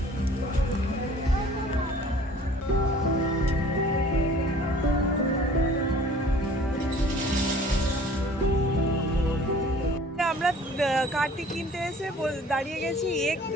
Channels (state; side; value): normal; both; correlation 0.51